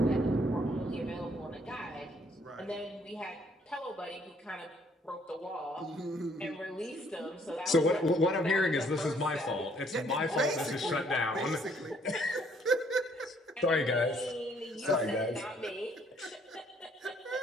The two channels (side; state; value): both; normal; correlation 0.65